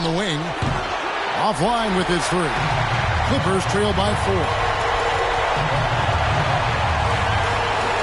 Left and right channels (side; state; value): both; identical; correlation 1.00